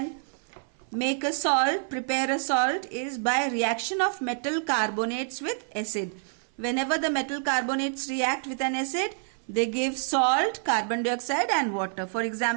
make a salt, prepare a salt, is by reaction of metal carbonates with acid. Whenever the metal carbonates react with an acid, they give salt, carbon dioxide and water. For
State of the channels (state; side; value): silent; left; 58 dB below the other